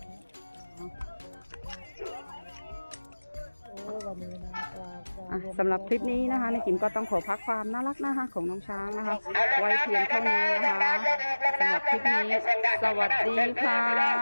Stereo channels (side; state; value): both; inverted; correlation -1.00